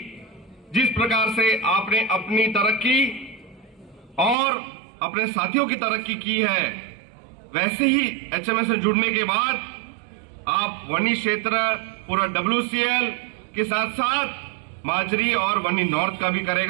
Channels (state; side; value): drops out; left; at 4.4 s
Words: जिस प्रकार से आपने अपनी तरक्की और अपने साथियों की तरक्की की है, वैसे ही एचएमएस से जुड़ने के बाद आप वनी क्षेत्र पूरा WCL के साथ साथ माजरी और वनी नॉर्थ का भी